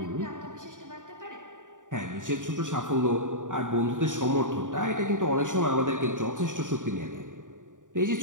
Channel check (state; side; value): late; left; 0.87 ms